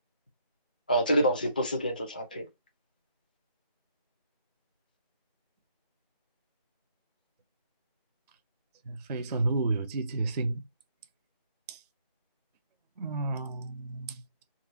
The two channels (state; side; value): inverted; both; correlation -0.69